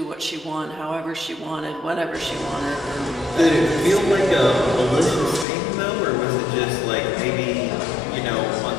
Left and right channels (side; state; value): right; drops out; at 5.5 s